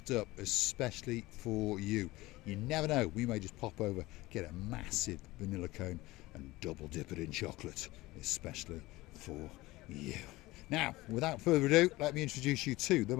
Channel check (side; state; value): right; quieter; 19.5 dB